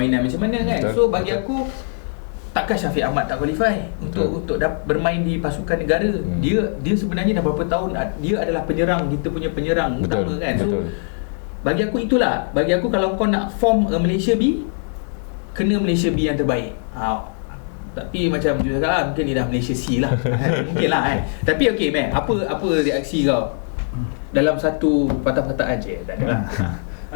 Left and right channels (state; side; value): silent; right; digital silence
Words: macam mana kan. So bagi aku, takkan Syafiq Ahmad tak qualify untuk bermain di pasukan negara. Dia sebenarnya dah berapa tahun dia adalah penyerang, kita punya penyerang utama kan. So bagi aku itulah, bagi aku kalau kau nak form Malaysia B, kena Malaysia B yang terbaik. Tapi macam Jujur cakap lah, mungkin ni dah Malaysia C lah. Mungkin lah kan. Tapi okey Matt, apa reaksi kau dalam satu patah-patahan je? Tak ada lah.